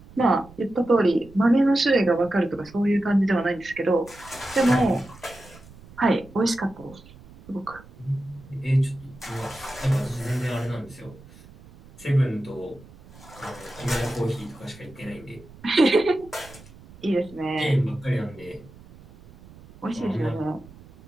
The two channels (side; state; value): right; noise; rumble, 22 dB below the sound